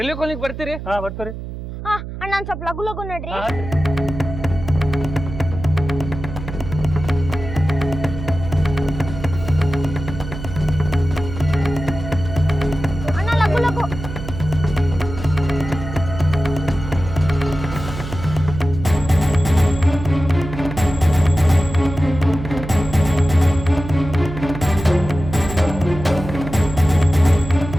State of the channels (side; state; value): right; noise; hum, 9 dB below the sound